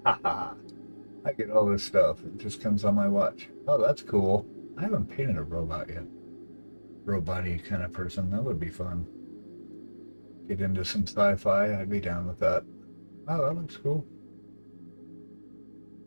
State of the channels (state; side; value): inverted; both; correlation -1.00